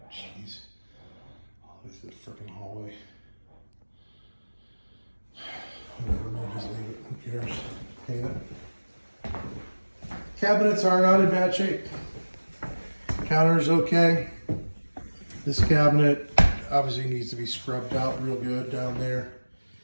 Jeez. All the way through the freaking hallway. Whatever, maybe just leave it. Who cares? Paint it. Cabinets are not in bad shape. Counter's okay. This cabinet obviously needs to be scrubbed out real good down there.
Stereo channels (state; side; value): inverted; both; correlation -1.00